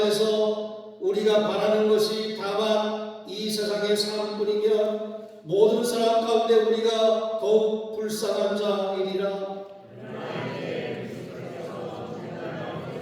우리가 바라는 것이 다만 이 세상의 삶뿐이면 모든 사람 가운데 우리가 더욱 불쌍한 자이리라.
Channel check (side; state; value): both; identical; correlation 1.00